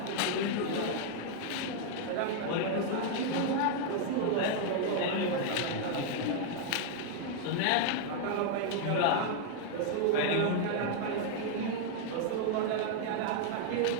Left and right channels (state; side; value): different; both; correlation 0.00